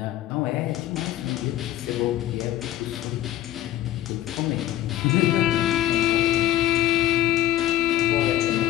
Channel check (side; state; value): right; quieter; 13.7 dB